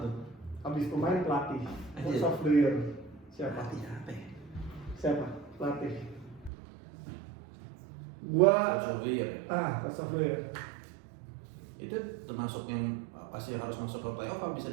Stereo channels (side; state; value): left; drops out; at 6.5 s